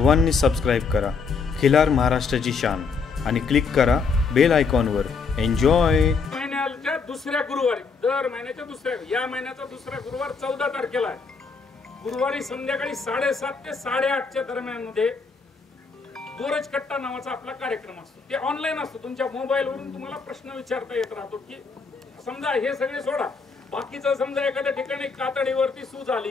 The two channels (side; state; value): right; quieter; 5.0 dB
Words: सबस्क्राईब करा खिलार महाराष्ट्राची शान आणि क्लिक करा बेल आयकॉनवर. एन्जॉय. महिन्याच्या दुसऱ्या गुरुवारी, दर महिन्याच्या दुसऱ्या, या महिन्याचा दुसरा गुरुवार 14 तारखेला आहे. गुरुवारी संध्याकाळी 7:30 ते 8:30च्या दरम्यान मध्ये गोरज कट्टा नावाचा आपला कार्यक्रम असतो. ते ऑनलाईन असतो. तुमच्या मोबाईलवरून तुम्हाला प्रश्न विचारता येत राहतो की समजा हे सगळे सोडा, बाकीचं समजा एखाद्या ठिकाणी कातडीवरती सूज